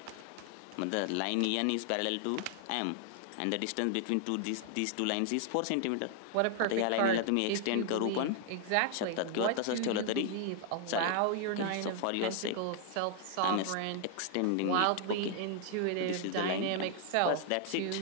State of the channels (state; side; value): different; both; correlation 0.00